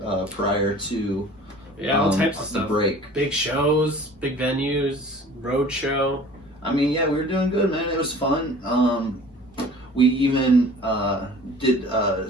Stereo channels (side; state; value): both; normal; correlation 0.46